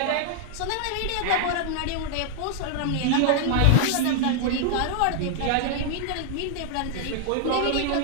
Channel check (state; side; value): different; both; correlation 0.00